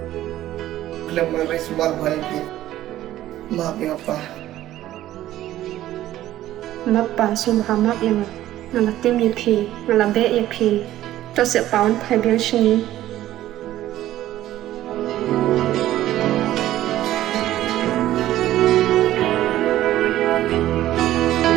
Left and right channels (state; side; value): quieter; left; 13.9 dB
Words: Khlem maris bar bhai maphi apa? Mappa sumhamak yang ngalatim yapi, ngalabe yapi. Cho sẽ báo phải biến sinh